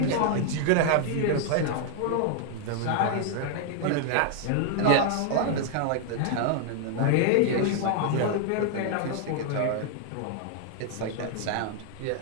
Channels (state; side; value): different; both; correlation 0.00